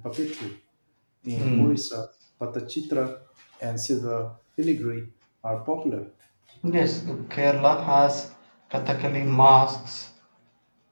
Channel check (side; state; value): both; inverted; correlation -1.00